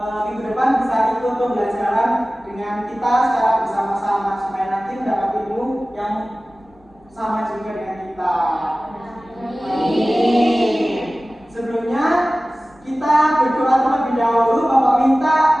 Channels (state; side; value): normal; both; correlation 0.97